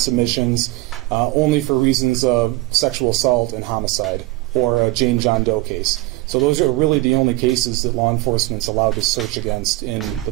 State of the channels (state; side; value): quieter; left; 20.4 dB